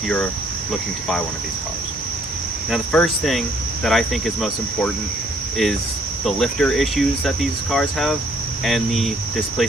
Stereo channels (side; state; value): both; normal; correlation 0.63